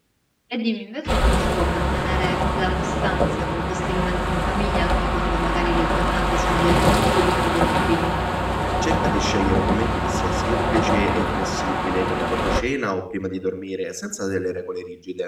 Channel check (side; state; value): both; identical; correlation 1.00